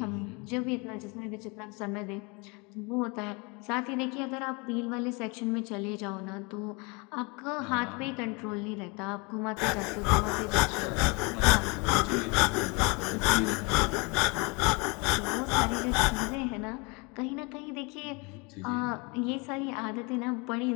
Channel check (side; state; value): right; quieter; 29.4 dB